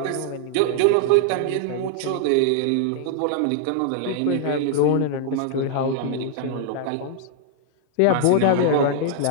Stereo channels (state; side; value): different; both; correlation -0.01